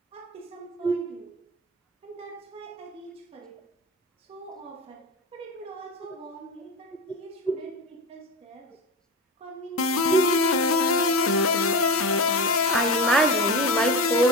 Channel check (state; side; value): normal; both; correlation 0.24